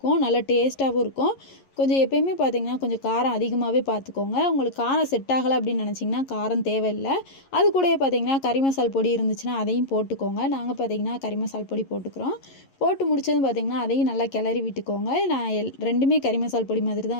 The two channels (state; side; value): late; right; 11 ms